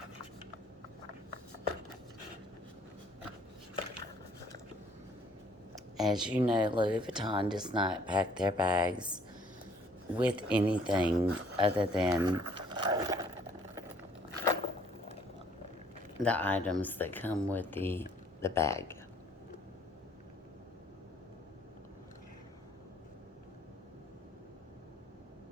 As you know, Louis Vuitton does not pack their bags with anything other than the items that come with the bag.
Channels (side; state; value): both; normal; correlation 0.61